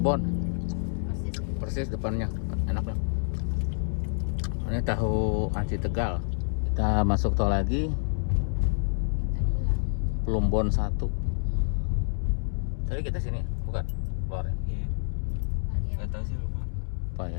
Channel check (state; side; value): silent; right; digital silence